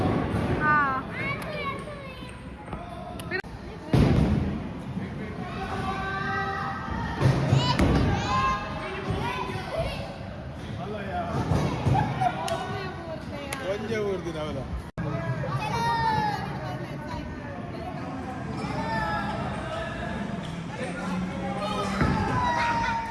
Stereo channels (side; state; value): both; identical; correlation 1.00